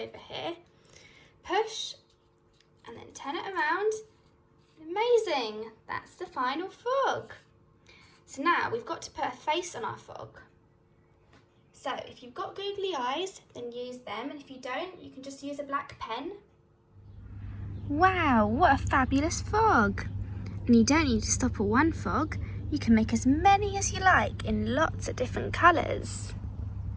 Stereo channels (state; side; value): identical; both; correlation 1.00